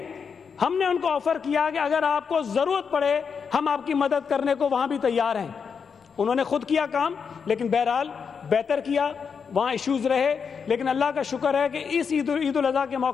ہم نے ان کو آفر کیا کہ اگر آپ کو ضرورت پڑے ہم آپ کی مدد کرنے کو وہاں بھی تیار ہیں. انہوں نے خود کیا کام, لیکن بہرحال بہتر کیا. وہاں ایشوز رہے, لیکن اللہ کا شکر ہے کہ اس عید الاضحیٰ کے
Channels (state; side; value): quieter; right; 6.2 dB